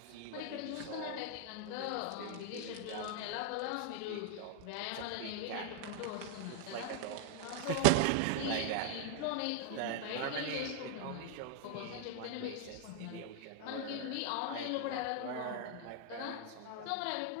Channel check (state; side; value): different; both; correlation -0.01